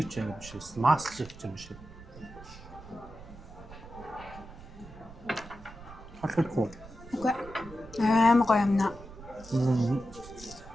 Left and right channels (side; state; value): right; noise; rumble, 17 dB below the sound